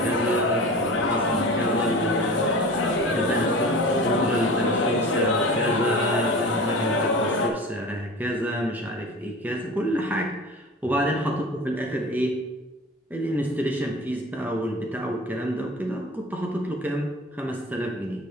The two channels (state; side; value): normal; both; correlation 0.36